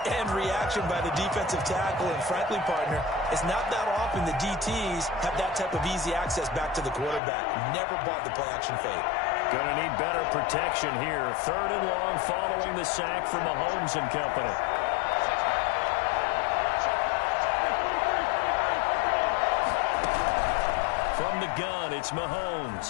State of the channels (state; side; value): drops out; right; at 7.2 s